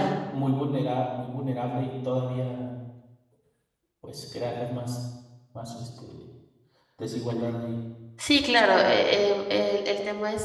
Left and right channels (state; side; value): identical; both; correlation 1.00